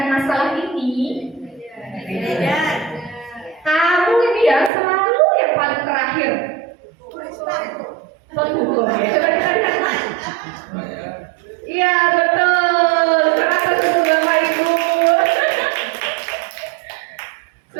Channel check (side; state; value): left; drops out; at 4.7 s